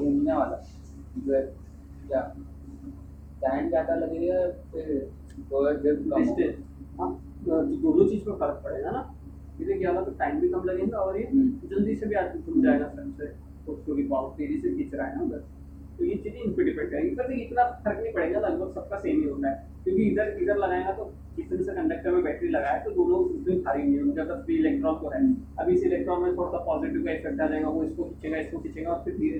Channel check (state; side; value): identical; both; correlation 1.00